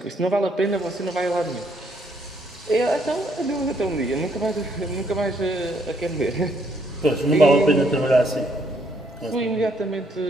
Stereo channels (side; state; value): both; normal; correlation 0.70